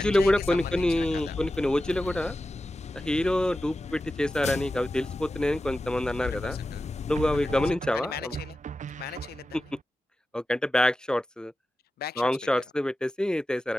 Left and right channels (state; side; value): normal; both; correlation 0.93